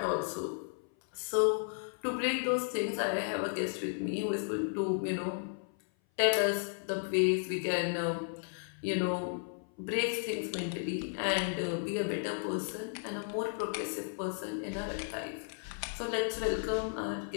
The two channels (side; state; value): right; silent; 55 dB below the other